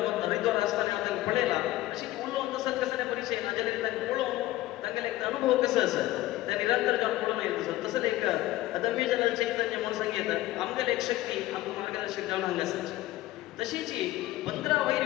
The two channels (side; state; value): right; quieter; 16.4 dB